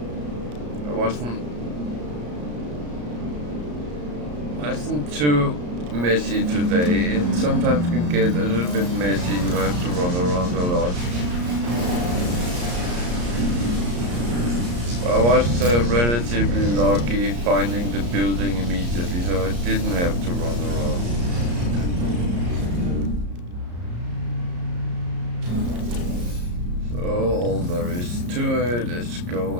wasn't too messy today. It sometimes can get a little bit messy. You have to run around a lot. I was relatively lucky finding the building immediately, so I didn't have to run around. All there is to it is go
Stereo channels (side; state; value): left; late; 34 ms